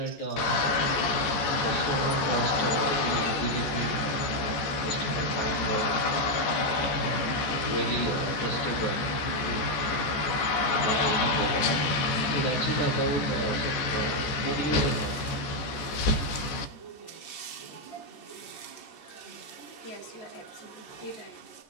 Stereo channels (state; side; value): late; right; 14 ms